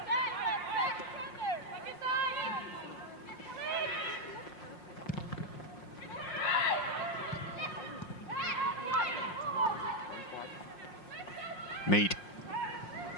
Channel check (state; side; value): late; right; 5.6 ms